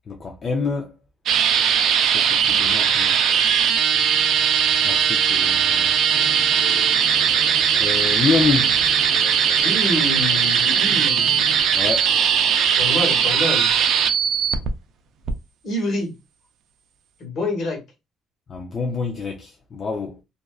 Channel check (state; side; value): quieter; left; 5.6 dB